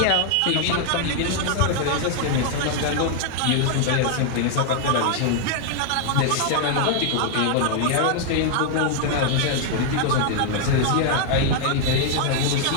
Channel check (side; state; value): both; different; correlation 0.00